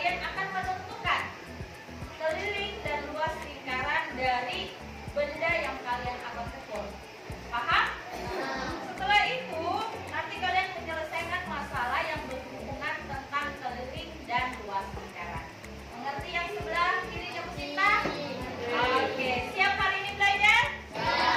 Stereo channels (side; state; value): both; identical; correlation 1.00